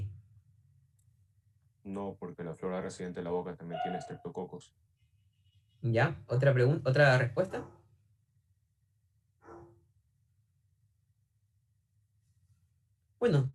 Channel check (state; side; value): identical; both; correlation 1.00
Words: No, porque la flora residente de la boca también tiene estreptococos. ¿Ya? ¿Otra pregunta? ¿Otra respuesta? Bueno,